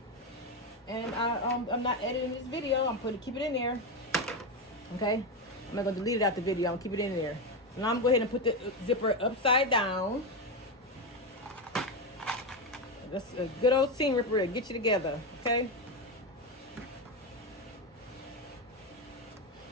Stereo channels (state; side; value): normal; both; correlation 0.12